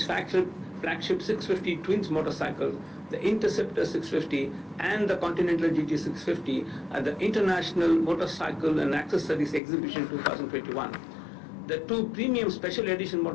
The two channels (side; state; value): right; drops out; at 9.6 s